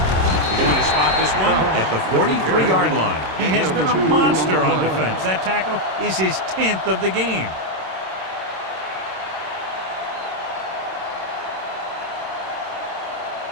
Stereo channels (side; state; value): left; late; 26 ms